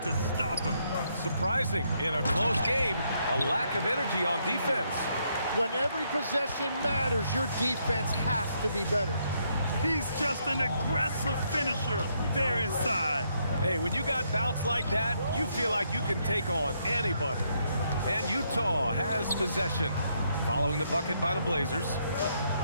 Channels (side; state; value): both; inverted; correlation -0.75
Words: to stop him. Surprising in a close game, a lack of energy on defense. When every possession matters, your defense has to be better. He's just an aggressive finisher there inside. Hey, when you got bounce like that, you feel like you can take on anybody. And Utah has possession. Following the bucket by the Blazers.